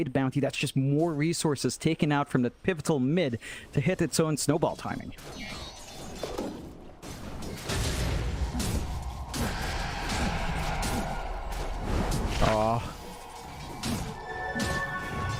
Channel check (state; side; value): identical; both; correlation 1.00